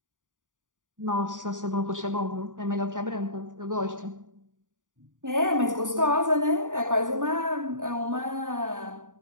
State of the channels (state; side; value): late; left; 0.88 ms